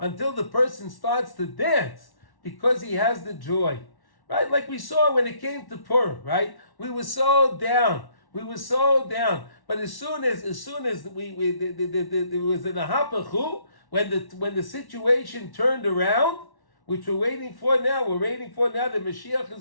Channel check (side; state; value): right; late; 1.1 ms